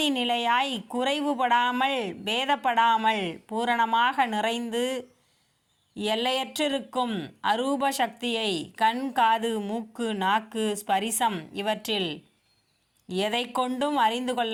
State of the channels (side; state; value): both; identical; correlation 1.00